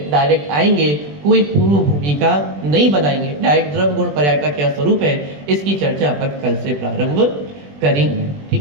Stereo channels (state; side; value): late; left; 20 ms